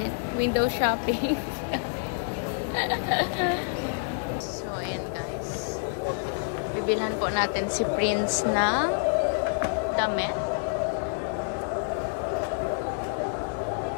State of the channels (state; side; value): silent; right; digital silence